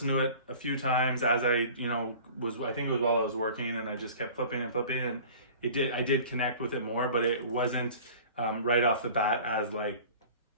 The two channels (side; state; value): both; inverted; correlation -0.43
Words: to it a few times as I think it was while I was working, and I just kept flipping and flipping, and I did connect with it more, but it wasn't right off the bat as